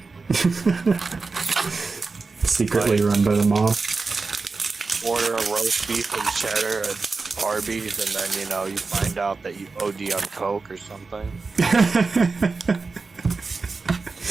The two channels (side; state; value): left; quieter; 4.2 dB